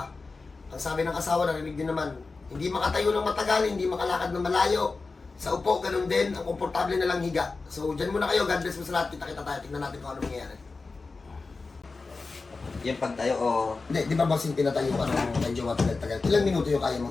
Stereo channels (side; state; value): right; quieter; 4.0 dB